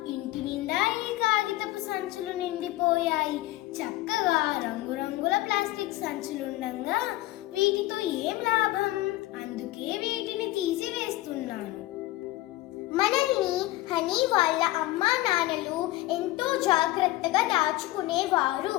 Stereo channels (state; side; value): quieter; right; 17.4 dB